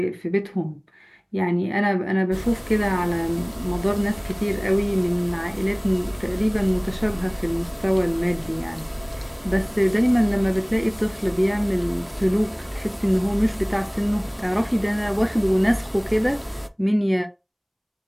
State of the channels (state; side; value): identical; both; correlation 1.00